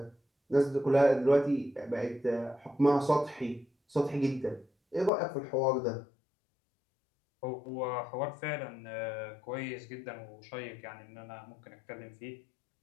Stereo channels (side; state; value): right; drops out; at 5.1 s